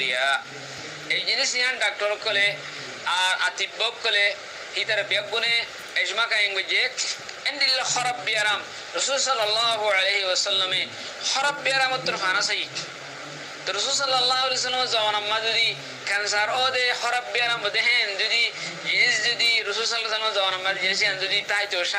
এই জিনিস ইয়ান ডাক্তার কলে আর আতিব্বক কলে হিতার বেগুনে এজমা কায়েম গজে এন্ডিল্লা খরাব বিয়ারাম রাসূল সাল্লাল্লাহু আলাইহি ওয়াসাল্লামে খরাব বিয়ারাম তোর ফানাসাই তো রাসূল সাল্লাল্লাহু আলাইহি ওয়াসাল্লাম জাওয়ান আম্মা যদি ক্যান্সার ও দে খরাব বিয়ারাম দেখেন যদি রাসূল সাল্লাল্লাহু আলাইহি ওয়াসাল্লাম জাওয়ান আম্মা যদি তাই তো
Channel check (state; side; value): identical; both; correlation 1.00